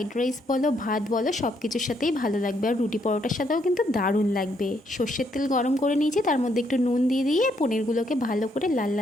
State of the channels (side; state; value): both; normal; correlation 0.73